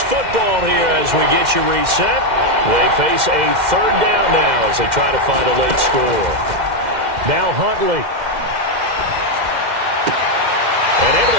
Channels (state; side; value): late; left; 2.1 ms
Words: football here as we get you reset. They face a 3rd down now as they try to find a late score. Now Huntley. And able